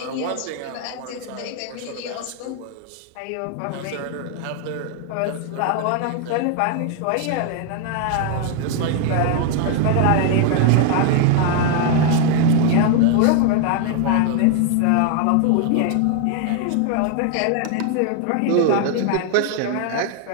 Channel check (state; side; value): different; both; correlation 0.01